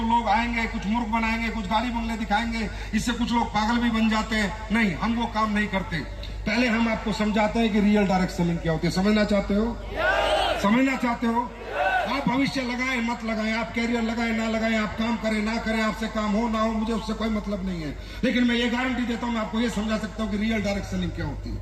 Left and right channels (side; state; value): both; identical; correlation 1.00